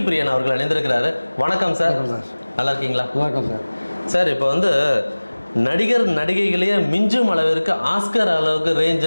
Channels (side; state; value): both; inverted; correlation -1.00